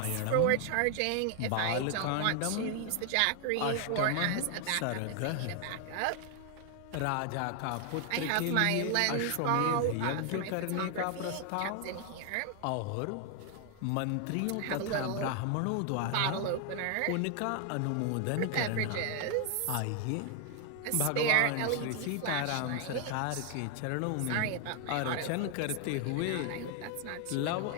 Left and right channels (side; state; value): both; different; correlation 0.00